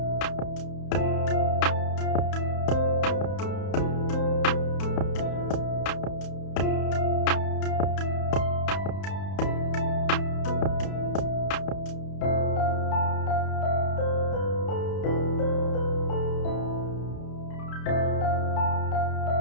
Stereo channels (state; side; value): late; right; 31 ms